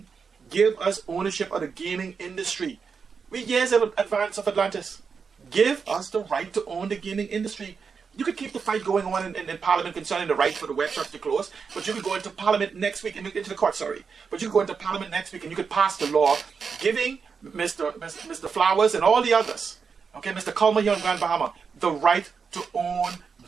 Give us ownership of the gaming industry. We're years in advance of Atlantis. Give us the right to own the gaming industry. You could keep the fight going on in Parliament concerning the right for the web shops to close, but you could go into Parliament next week, into the court, sorry. But you could go into Parliament next week and you could pass the law giving Mr. Flowers and all the others, okay, Mr. Culmer here in Grand Bahama, the right to own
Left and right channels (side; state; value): left; quieter; 5.7 dB